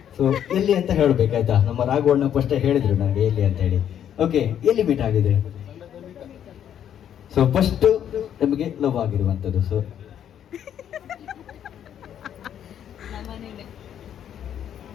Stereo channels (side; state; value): right; quieter; 9.7 dB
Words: ಸೊ ಎಲ್ಲಿ ಅಂತ ಹೇಳ್ಬೇಕಾಯ್ತಾ? ನಮ್ಮ ರಾಘವಣ್ಣ ಫಸ್ಟ್ ಹೇಳಿದ್ರು ನನಗೆ ಎಲ್ಲಿ ಅಂತ ಹೇಳಿ. ಓಕೆ, ಎಲ್ಲಿ ಮೀಟ್ ಆಗಿದ್ರೆ? ಸೊ ಫಸ್ಟ್ ನಮಗೆ ಲವ್ ಆಗಿರುವಂತದ್ದು. ಸೊ